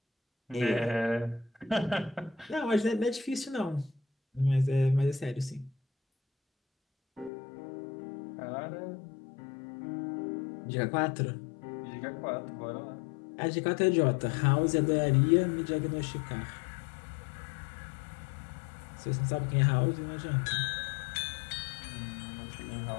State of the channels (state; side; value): drops out; right; at 7.3 s